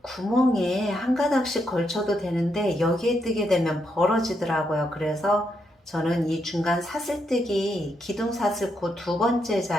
구멍에 한 가닥씩 걸쳐도 되는데 여기에 뜨게 되면 벌어지더라고요. 그래서 저는 이 중간 사슬뜨기 기둥 사슬코 2번째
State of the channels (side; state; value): both; normal; correlation 0.80